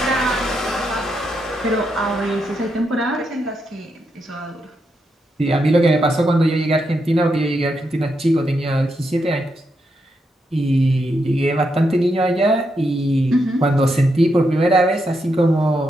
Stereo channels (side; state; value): both; normal; correlation 0.82